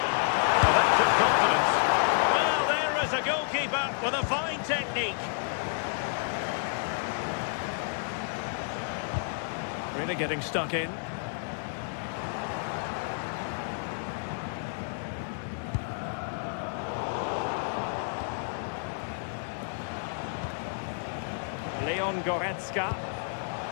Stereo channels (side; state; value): right; silent; 58 dB below the other